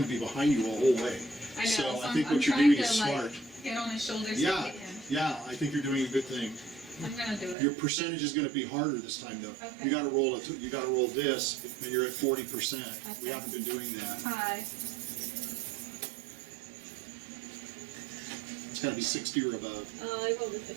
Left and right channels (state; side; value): drops out; left; at 7.6 s